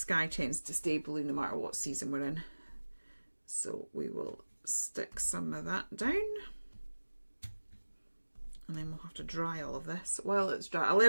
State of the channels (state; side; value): inverted; both; correlation -1.00